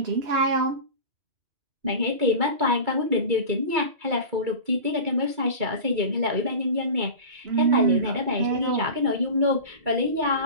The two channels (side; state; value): left; late; 2.3 ms